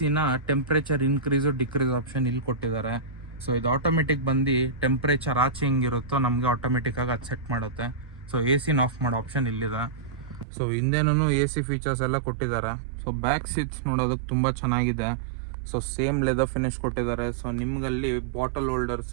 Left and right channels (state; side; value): drops out; left; at 10.5 s